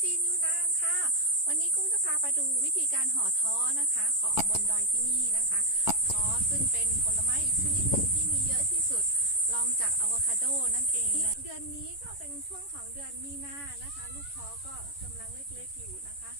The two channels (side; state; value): right; late; 11 ms